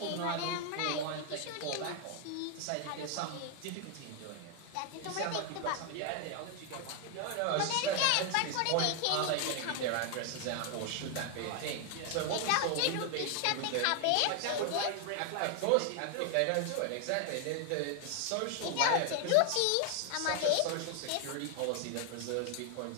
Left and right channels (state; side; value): different; both; correlation 0.00